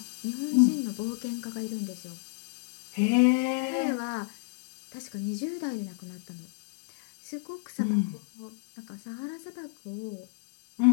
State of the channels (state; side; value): silent; right; 57 dB below the other